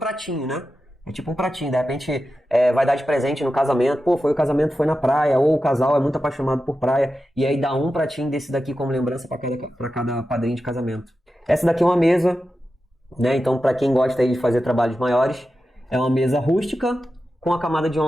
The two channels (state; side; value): normal; both; correlation 0.91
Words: né? É tipo um pratinho, de repente vai dar de presente no casamento. Pô, foi na praia, ou o casal é muito apaixonado por praia, e aí dá um pratinho desse daqui como lembrança para cada padrinho de casamento. Essa daqui é uma mesa, né? Então, para quem gosta aí de fazer trabalhos maiores, é uma mesa rústica com a camada de